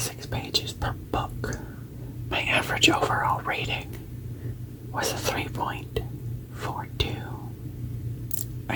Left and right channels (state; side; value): identical; both; correlation 1.00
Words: pages per book. My average overall rating was a 3.42. I